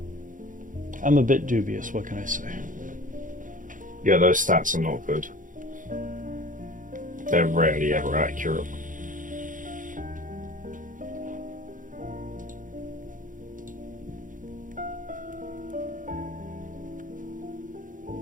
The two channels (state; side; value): late; left; 0.38 ms